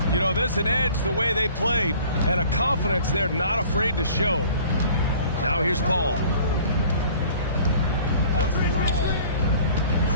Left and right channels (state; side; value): inverted; both; correlation -0.49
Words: You know, there's an edge the way they play and a confidence they're not afraid to show. Now here's Paul.